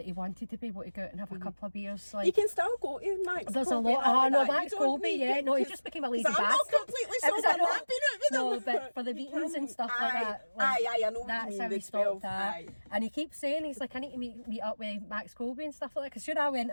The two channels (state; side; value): inverted; both; correlation -1.00